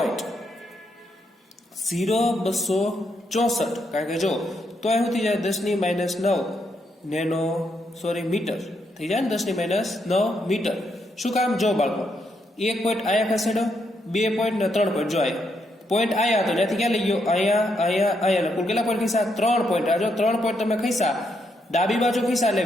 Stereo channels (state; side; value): normal; both; correlation 0.78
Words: કારણ કે જો તો અહીં શું થઈ જાય? 10⁻9 મીટર થઈ જાય ને. 10⁻9 મીટર. શું કામ? જો બાળકો 1 પોઈન્ટ અહીંયા ખસેડો, 2 પોઈન્ટ ને 3 પોઈન્ટ. જો અહીંયા પોઈન્ટ આયા હતો ત્યાંથી ક્યાં લઈ ગયો? અહીંયા કુલ કેટલા પોઈન્ટ ખીસા? 3 પોઈન્ટ. આ જો 3 પોઈન્ટ તમે ખીસા, ડાબી બાજુ ખીસા એટલે